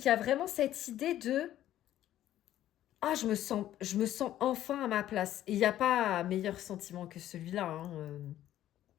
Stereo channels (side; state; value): right; quieter; 12.7 dB